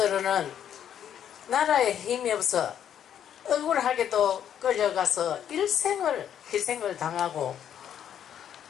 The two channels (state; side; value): quieter; right; 9.5 dB